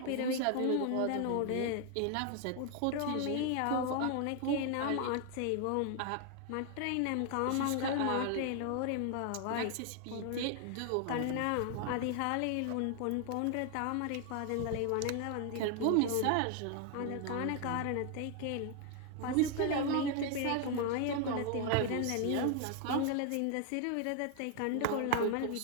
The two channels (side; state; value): both; different; correlation 0.00